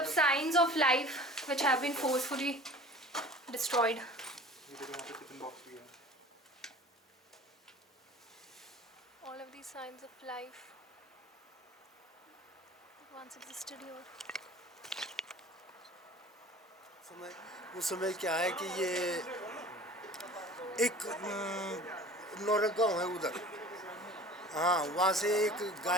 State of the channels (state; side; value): normal; both; correlation 0.43